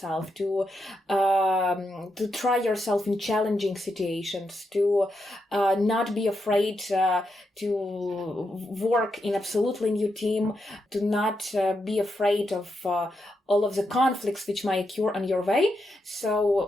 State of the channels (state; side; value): normal; both; correlation 0.84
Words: to try yourself in challenging situations, to not be afraid to work in absolutely new team, to not be afraid of all of the conflicts which might occur on your way.